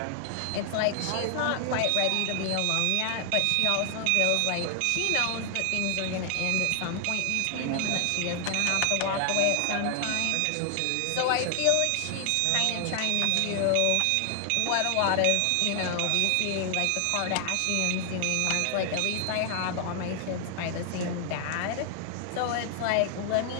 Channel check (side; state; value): both; different; correlation 0.00